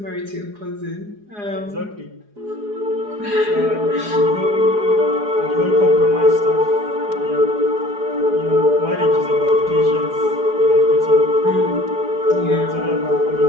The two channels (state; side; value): late; left; 4.8 ms